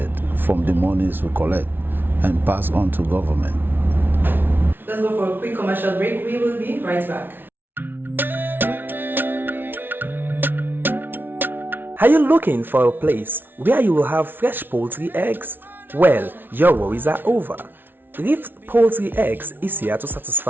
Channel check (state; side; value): late; left; 0.099 ms